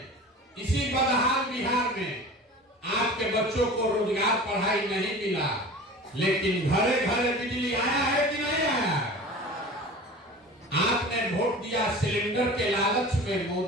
इसी बदहाल बिहार में आपके बच्चों को रोजगार, पढ़ाई नहीं मिला, लेकिन घरे घरे बिजली आया है कि नहीं आया? आपने वोट दिया सिलेंडर के लालच में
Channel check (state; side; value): normal; both; correlation 0.37